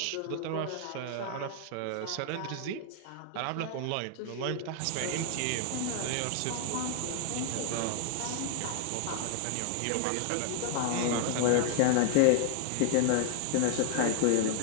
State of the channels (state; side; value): different; both; correlation 0.00